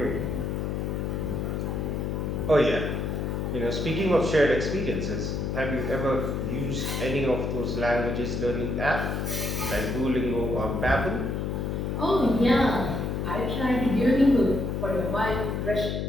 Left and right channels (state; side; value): noise; left; hum, 1 dB below the sound